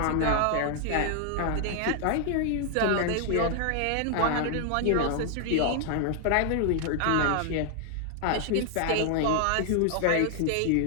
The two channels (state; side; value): different; both; correlation 0.00